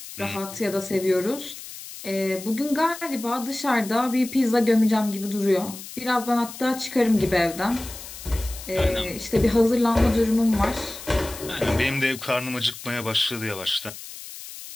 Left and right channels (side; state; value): left; noise; hiss, 13 dB below the sound